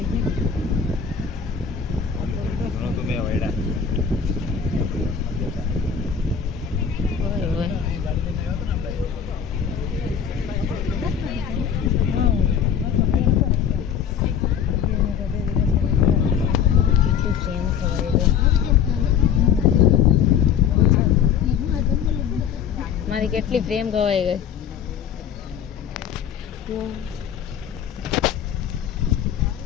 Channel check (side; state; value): right; quieter; 7.8 dB